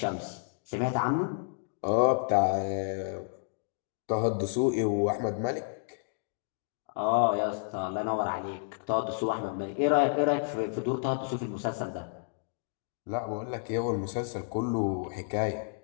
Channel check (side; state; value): right; silent; digital silence